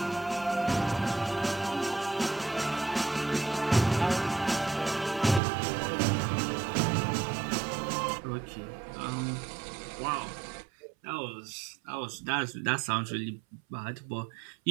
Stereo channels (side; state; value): left; drops out; at 5.4 s